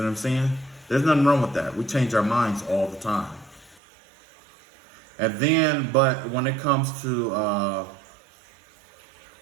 I'm saying? There's nothing wrong with that. We change our minds all the time. And then, but when it comes to,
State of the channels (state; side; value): drops out; left; at 3.8 s